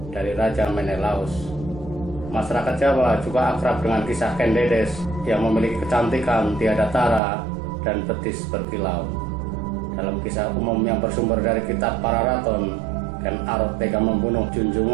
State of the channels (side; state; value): left; drops out; at 7.2 s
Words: dari Raja Menelaus. Masyarakat Jawa juga akrab dengan kisah Ken Dedes yang memiliki kecantikan tiada tara dan betis berkilau. Dalam kisah umum yang bersumber dari kitab Pararaton, Ken Arok tega membunuh